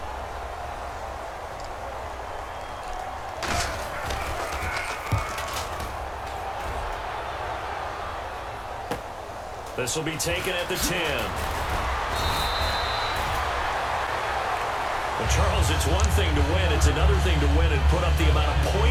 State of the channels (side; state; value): both; identical; correlation 1.00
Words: This will be taken at the 10. But Charles, it's one thing to win. It's another thing to win and put up the amount of